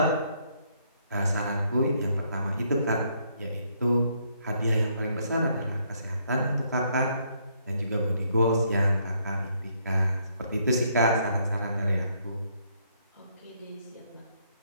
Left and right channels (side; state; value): both; inverted; correlation -0.71